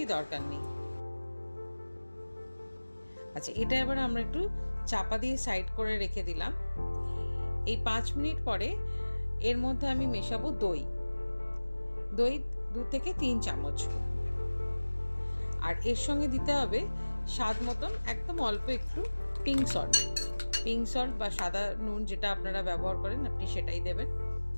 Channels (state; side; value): inverted; both; correlation -1.00